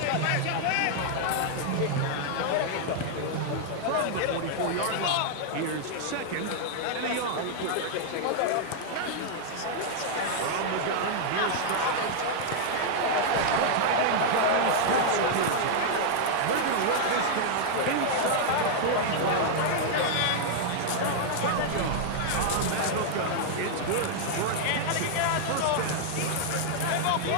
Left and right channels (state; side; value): different; both; correlation -0.01